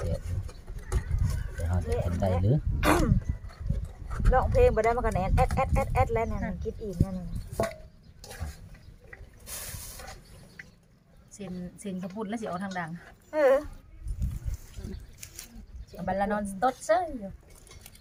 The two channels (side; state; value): both; identical; correlation 1.00